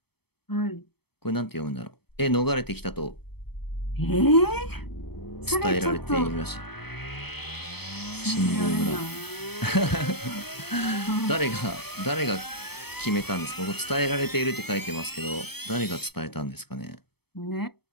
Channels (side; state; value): right; late; 0.97 ms